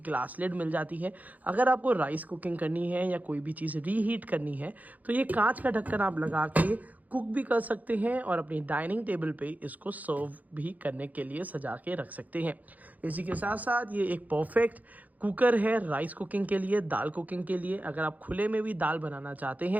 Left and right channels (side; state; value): left; late; 0.079 ms